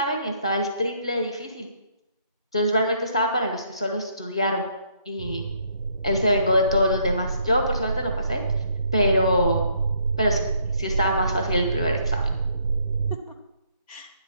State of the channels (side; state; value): both; inverted; correlation -0.69